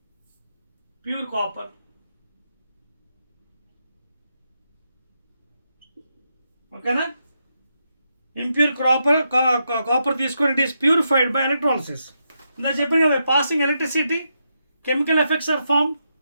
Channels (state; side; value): inverted; both; correlation -0.83